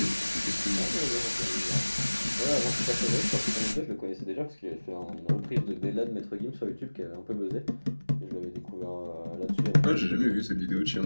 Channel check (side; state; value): both; inverted; correlation -1.00